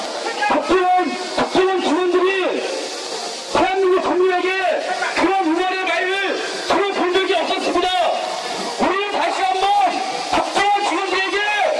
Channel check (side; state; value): both; identical; correlation 1.00